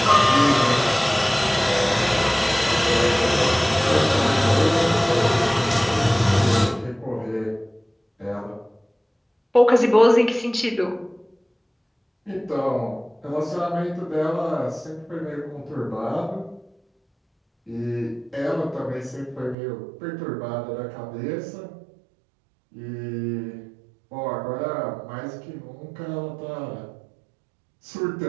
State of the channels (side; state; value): left; drops out; at 19.6 s